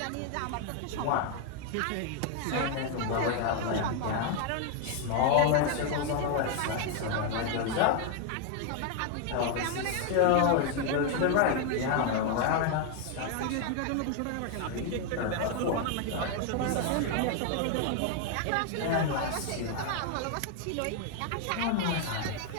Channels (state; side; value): different; both; correlation 0.01